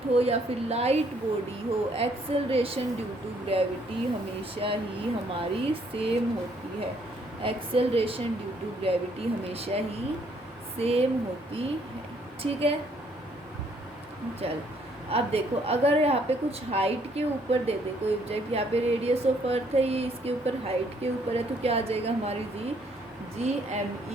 हो या फिर लाइट बॉडी हो, एक्सेलरेशन ड्यू टू ग्रेविटी हमेशा ही हमारी सेम होती है, एक्सेलरेशन ड्यू टू ग्रेविटी हमेशा ही सेम होती है। ठीक है, चल अब देखो अगर यहाँ पे कुछ हाइट के ऊपर दे दे कोई ऑब्जेक्ट, यहाँ पे रेडियस ऑफ अर्थ है, ये इसके ऊपर हाइट के ऊपर है, तो क्या आ जाएगा हमारी G M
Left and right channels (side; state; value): both; normal; correlation 0.67